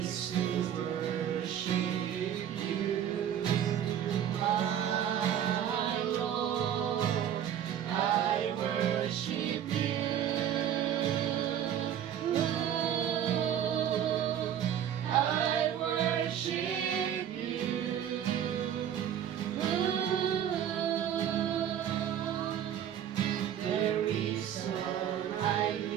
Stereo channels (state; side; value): quieter; left; 9.8 dB